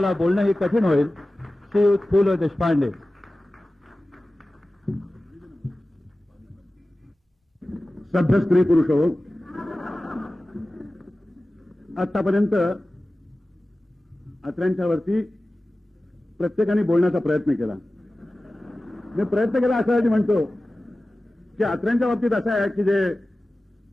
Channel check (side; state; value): both; normal; correlation 0.96